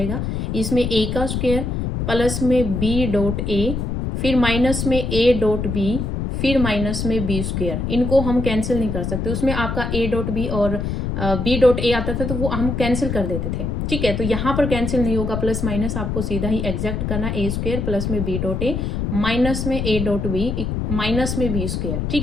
इसमें a का स्क्वायर प्लस में b डॉट a, फिर माइनस में a डॉट b, फिर माइनस में बी स्क्वायर। इनको हम कैंसिल नहीं कर सकते, उसमें आपका a डॉट बी और b डॉट a आता था तो वो हम कैंसिल कर देते थे। ठीक है, तो यहाँ पर कैंसिल नहीं होगा, प्लस माइनस आपको सीधा ही एग्जैक्ट करना, a स्क्वायर प्लस में b डॉट a माइनस में a डॉट b माइनस में b स्क्वायर। ठीक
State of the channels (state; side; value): noise; left; rumble, 2 dB below the sound